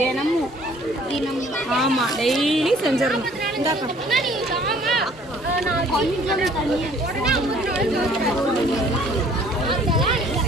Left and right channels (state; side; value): normal; both; correlation 0.56